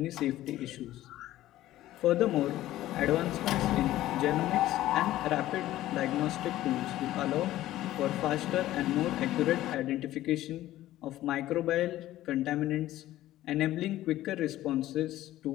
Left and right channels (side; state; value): right; quieter; 14.7 dB